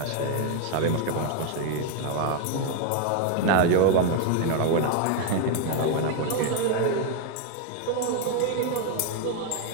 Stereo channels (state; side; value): different; both; correlation 0.01